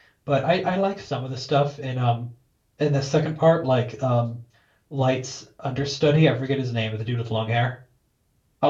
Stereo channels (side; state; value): both; identical; correlation 1.00